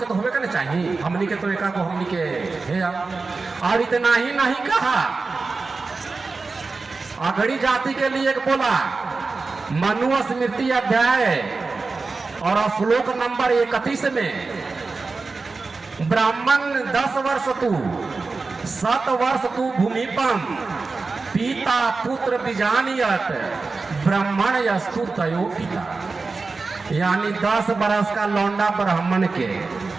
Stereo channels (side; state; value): left; quieter; 4.0 dB